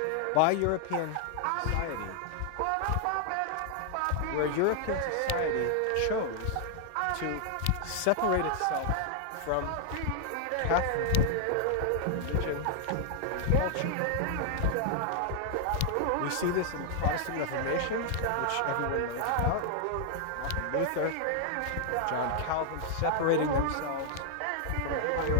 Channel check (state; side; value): different; both; correlation 0.00